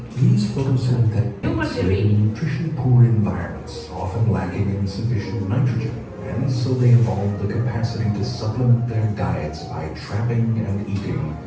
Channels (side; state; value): both; identical; correlation 1.00